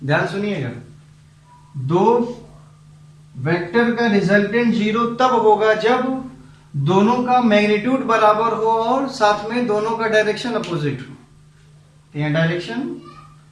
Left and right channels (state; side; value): identical; both; correlation 1.00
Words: ध्यान सुनिएगा, दो वेक्टर का रिजल्टेंट जीरो तब होगा जब दोनों का मैग्नीट्यूड बराबर हो और साथ में दोनों का डायरेक्शन अपोजिट हो। तो यहाँ डायरेक्शन